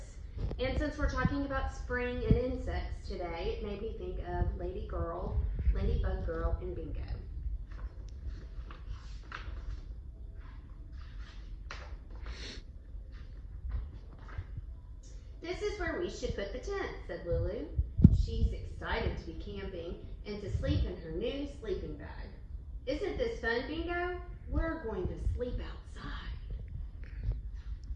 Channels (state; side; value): identical; both; correlation 1.00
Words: And since we're talking about spring and insects today, it made me think of Ladybug Girl and Bingo. This is where we should put the tent, said Lulu. She's excited to be camping and to sleep in her new sleeping bag. Isn't this fun, Bingo? We're going to sleep outside.